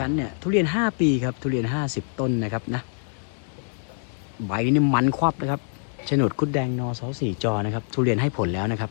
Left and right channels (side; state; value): right; silent; 62 dB below the other